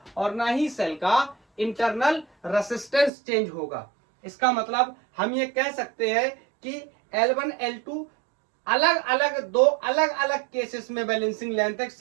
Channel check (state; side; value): drops out; left; at 3.1 s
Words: और ना ही सेल का इंटरनल रेसिस्टेंस चेंज होगा। इसका मतलब हम ये कह सकते हैं कि L1 L2 अलग अलग, दो अलग अलग केसेस में बैलेंसिंग लेंथ है,